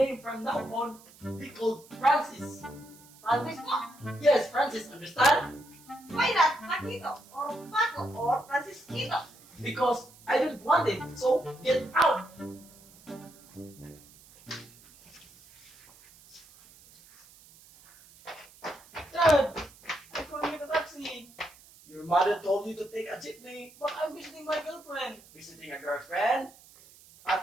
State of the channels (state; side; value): noise; right; hiss, 24 dB below the sound